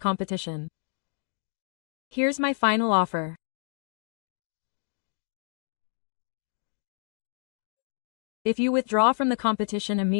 Here's my final offer. If you withdraw from the competition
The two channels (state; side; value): silent; right; digital silence